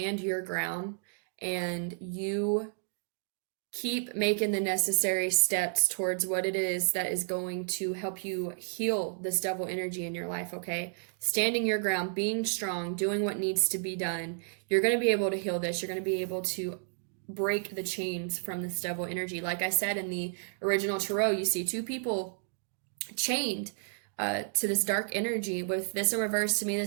your ground and you keep making the necessary steps towards what it is that is going to help you heal this devil energy in your life, okay? Standing your ground, being strong, doing what needs to be done, you're going to be able to heal this. You're going to be able to break the chains from this devil energy. Like I said in the original tarot, you see two people chained to this dark energy. With this in reverse, to me,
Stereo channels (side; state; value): left; silent; digital silence